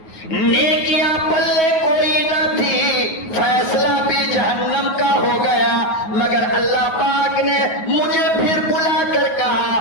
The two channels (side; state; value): right; late; 9.4 ms